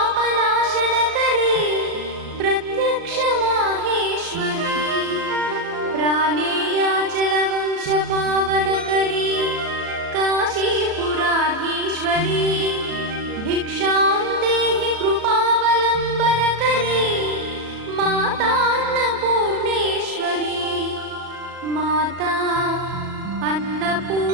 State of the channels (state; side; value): late; left; 36 ms